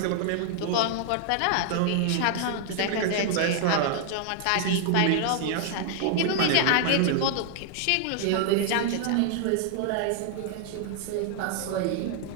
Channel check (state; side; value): different; both; correlation 0.00